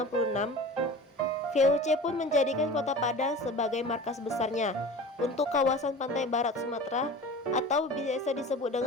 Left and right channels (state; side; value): normal; both; correlation 0.37